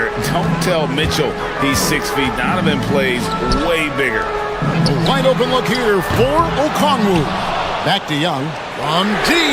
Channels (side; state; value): both; identical; correlation 1.00